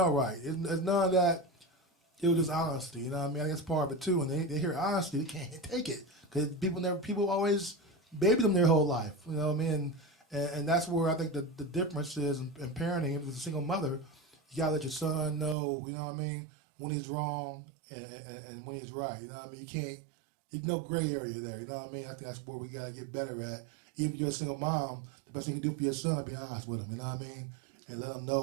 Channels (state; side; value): drops out; left; at 15.6 s